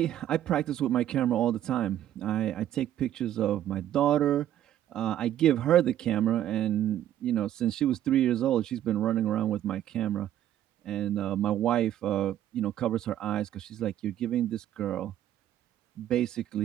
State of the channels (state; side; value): quieter; left; 11.8 dB